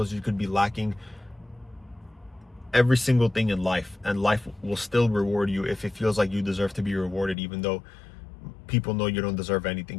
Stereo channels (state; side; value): drops out; right; at 7.4 s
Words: You could be lacking every single thing in life, and life will still reward you if it feels like you deserve to be rewarded, even though people know you don't deserve anything